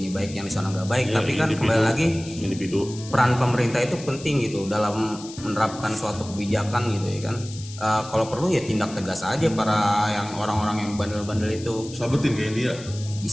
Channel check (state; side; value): noise; left; hiss, 16 dB below the sound